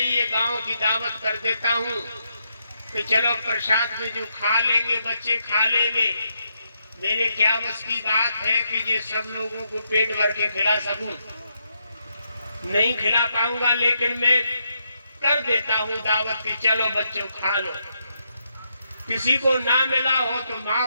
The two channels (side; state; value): both; inverted; correlation -0.80